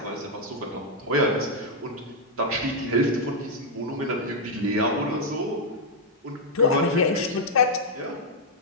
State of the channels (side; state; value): both; normal; correlation -0.02